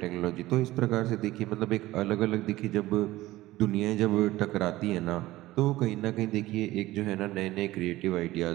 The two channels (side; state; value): left; quieter; 17.2 dB